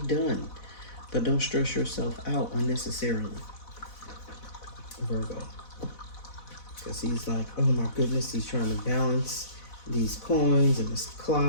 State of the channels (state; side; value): late; right; 4.1 ms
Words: done, but don't stress yourself out unnecessarily, Virgo. Because he's like, oh my goodness, he's trying to balance these coins and this